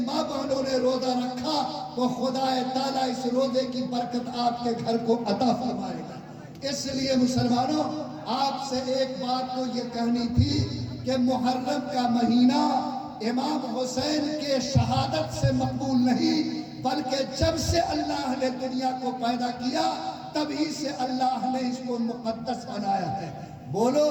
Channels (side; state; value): both; identical; correlation 1.00